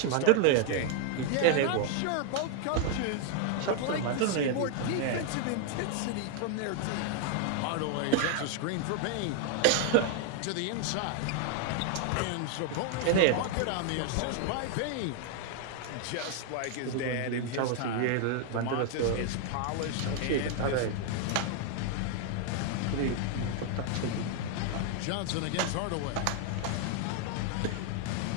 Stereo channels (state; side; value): different; both; correlation 0.00